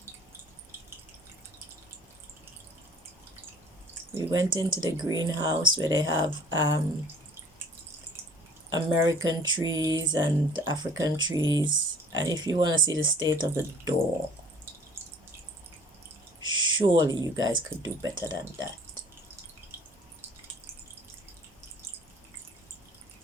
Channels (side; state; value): both; normal; correlation 0.51